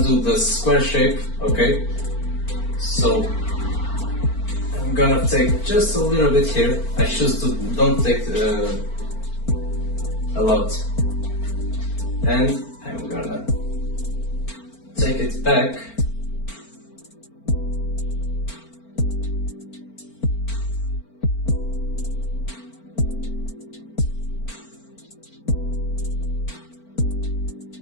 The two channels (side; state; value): right; late; 4.4 ms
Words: the square shape, okay? So I'm gonna take just a little bit here. I choose to don't take a lot. And I'm gonna take it back.